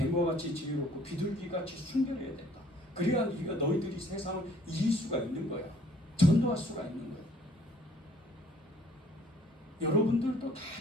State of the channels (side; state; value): both; normal; correlation 0.58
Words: 같이 지혜롭고 비둘기같이 순결해야 된다. 그래야 너희들이 세상을 이길 수가 있는 거야. 전도할 수가 있는 거야. 여러분들도 다